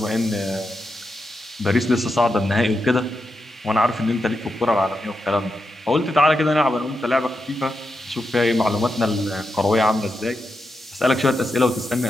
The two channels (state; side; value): normal; both; correlation 0.86